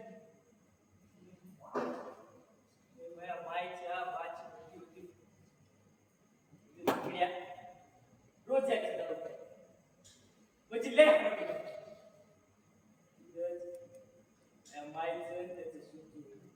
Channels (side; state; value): both; identical; correlation 1.00